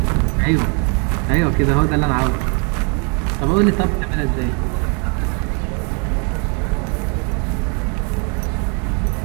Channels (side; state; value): left; quieter; 36.2 dB